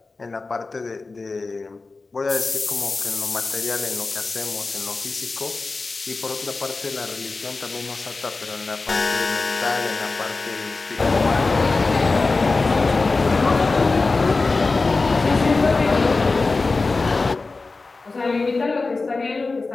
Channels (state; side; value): quieter; right; 3.8 dB